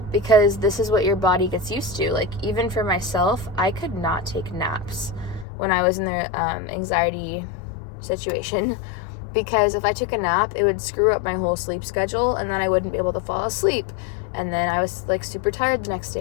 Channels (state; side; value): drops out; right; at 5.5 s